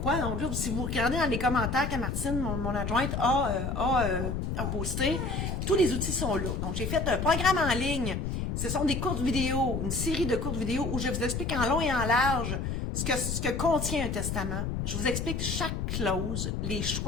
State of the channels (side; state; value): left; noise; rumble, 2 dB below the sound